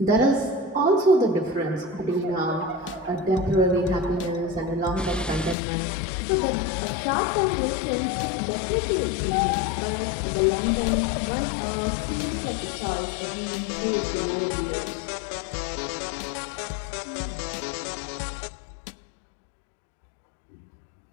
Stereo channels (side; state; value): right; drops out; at 5.6 s